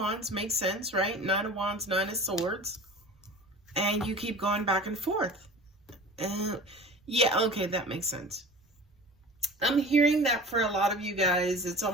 Makes sense, right? Nine of Wands, Nine of Swords. And you keep going back and forth. Yeah, okay, that makes sense. I'm hearing that for a lot of you guys, it's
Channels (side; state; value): both; normal; correlation 0.39